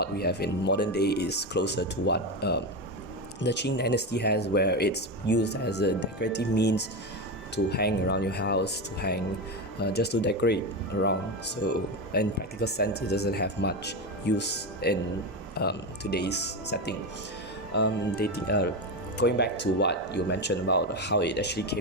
we have in modern day is closer to what the Qing dynasty has, where it's used as a decorative means to hang around your house, to hang just to decorate around. So in practical sense, it doesn't have much use in today's setting. Going back to what you mentioned about how it actually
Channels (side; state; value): both; normal; correlation 0.16